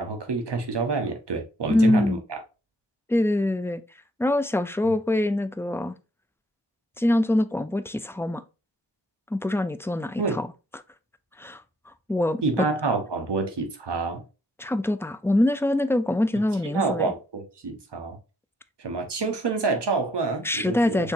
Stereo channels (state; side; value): normal; both; correlation 0.70